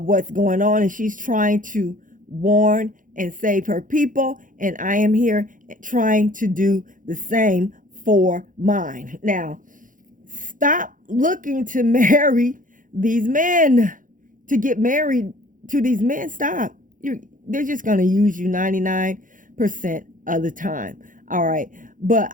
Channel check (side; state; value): left; late; 0.39 ms